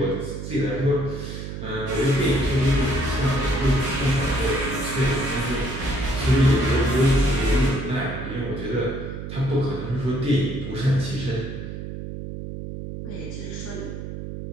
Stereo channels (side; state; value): right; noise; hum, 8 dB below the sound